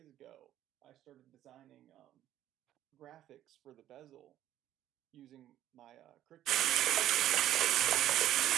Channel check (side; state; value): left; quieter; 12.5 dB